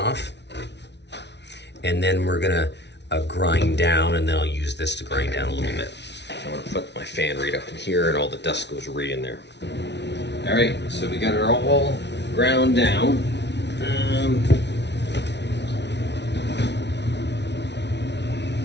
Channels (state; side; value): late; right; 0.50 ms